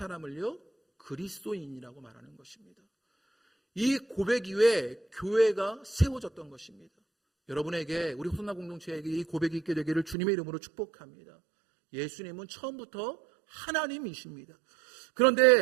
그리스도인이라고 말하는 것입니다. 이 고백 이후에 교회가 세워졌던 것입니다. 여러분에게, 우리 호선나 공동체에게 이 고백이 있게 되기를 주님의 이름으로 축복합니다. 예수님은 처음부터 하나님이십니다.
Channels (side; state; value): left; drops out; at 10.2 s